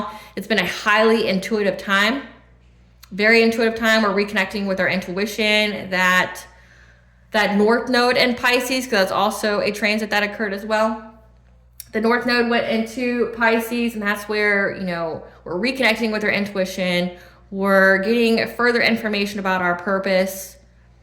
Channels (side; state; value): both; identical; correlation 1.00